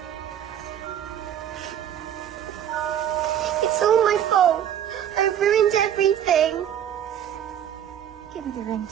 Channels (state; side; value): quieter; left; 10.2 dB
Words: It's all my fault. I've ruined everything. Give me the ring,